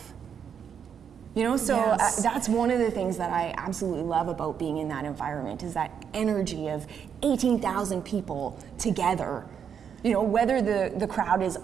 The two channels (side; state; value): left; quieter; 7.7 dB